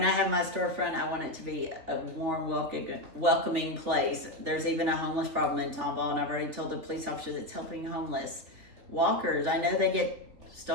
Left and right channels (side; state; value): left; late; 3.7 ms